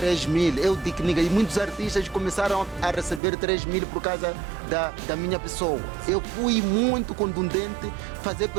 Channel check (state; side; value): drops out; left; at 3.2 s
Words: mil, eu digo, e muitos artistas começaram a receber 3 mil por causa da minha pessoa. Eu fui muito contundente fazer